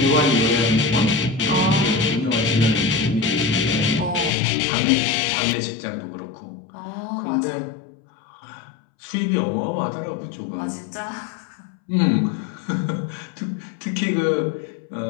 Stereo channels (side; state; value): right; drops out; at 4.3 s